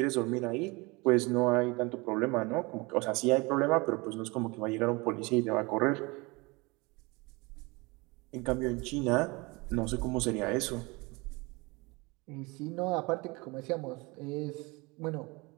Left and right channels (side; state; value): left; quieter; 25.7 dB